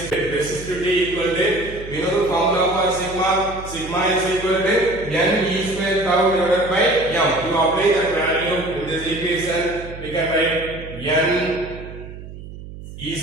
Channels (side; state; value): right; noise; hum, 13 dB below the sound